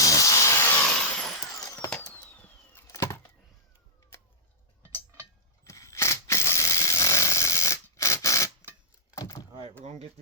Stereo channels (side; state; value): both; normal; correlation -0.11